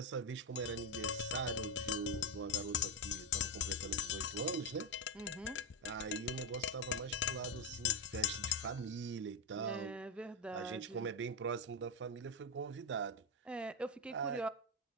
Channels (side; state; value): both; normal; correlation 0.08